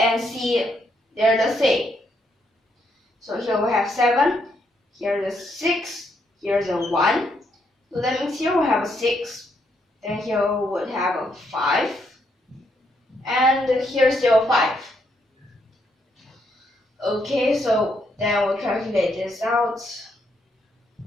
C, they're the same. So here we have 7, here's a 6, here's a 1. So that means here we have a 6, then here we would have a 5, and here's still 5. Okay, so then we'll calculate this out.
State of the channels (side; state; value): both; normal; correlation 0.75